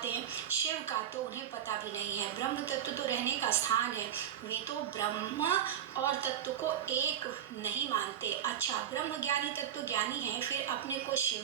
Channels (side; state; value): left; quieter; 9.9 dB